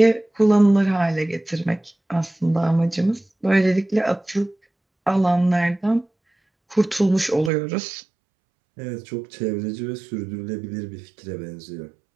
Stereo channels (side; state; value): left; drops out; at 7.5 s